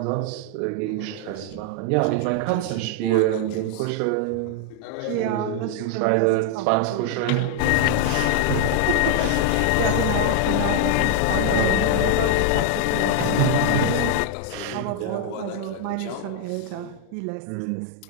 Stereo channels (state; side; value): different; both; correlation 0.00